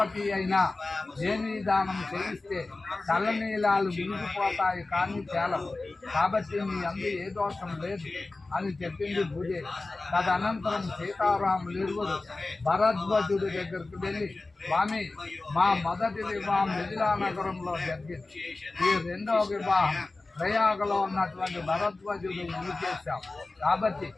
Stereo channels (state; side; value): quieter; right; 3.3 dB